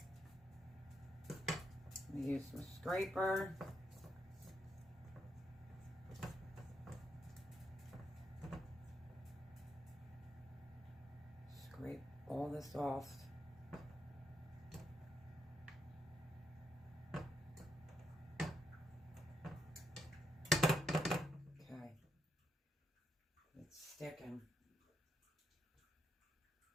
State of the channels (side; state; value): both; normal; correlation 0.80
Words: I'm going to use my scraper. Scrape all this off. Okay. It's sticking.